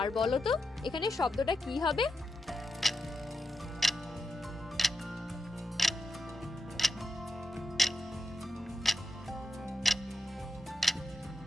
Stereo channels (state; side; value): normal; both; correlation 0.88